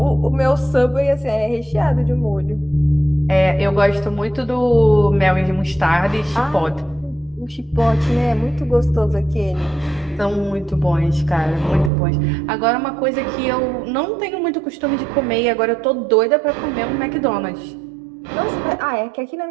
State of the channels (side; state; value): left; drops out; at 11.9 s